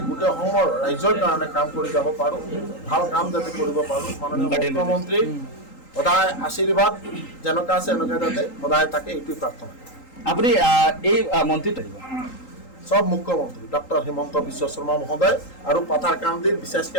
গোটেই অসমৰ ৰাইজৰ কাৰণে কাম কৰি যাব পাৰোঁ, ভাল কাম যাতে কৰিব পাৰোঁ। মাননীয় মুখ্যমন্ত্ৰী সদায় আশীৰ্বাদ যেনেকুৱা আছে এনেকুৱা যাতে সদায় থাকে, এইটোৱে প্ৰাৰ্থনা। আপুনি এই মন্ত্ৰীত সব মুখ্যমন্ত্রী ডক্টর হিমন্ত বিশ্ব শর্মা মহোদয় আর পাথারকান্দির বিশেষকে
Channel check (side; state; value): right; late; 3.8 ms